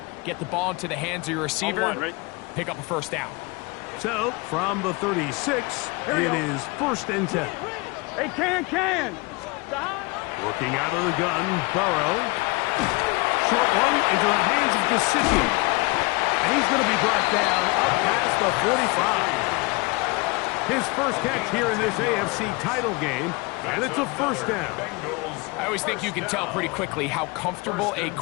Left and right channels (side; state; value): right; quieter; 26.3 dB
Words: Get the ball into the hands of your receiver, pick up a first down. So, from the 36, it is 1st and 10. Hey, can. Working out of the gun, Burrow. Short one into the hands of Gesicki. And he's going to be brought down up past the 45. His first catch here in this AFC title game, and it's a first down. I always think you can tell pretty quickly how comfortable a